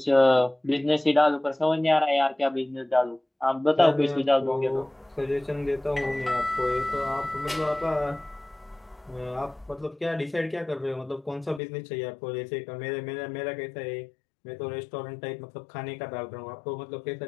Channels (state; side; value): drops out; right; at 11.6 s